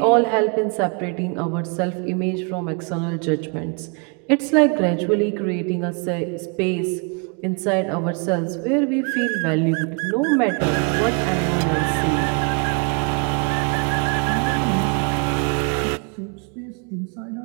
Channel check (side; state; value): left; quieter; 35.8 dB